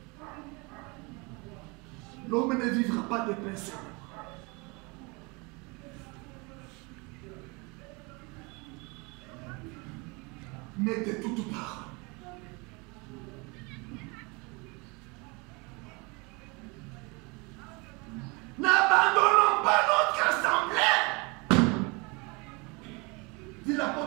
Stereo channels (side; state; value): left; quieter; 28.4 dB